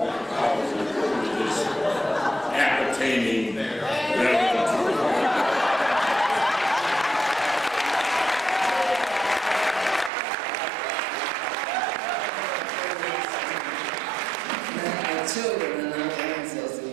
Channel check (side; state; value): left; drops out; at 10.1 s